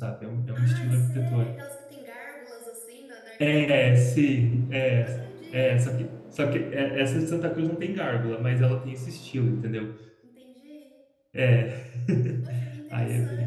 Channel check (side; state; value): both; identical; correlation 1.00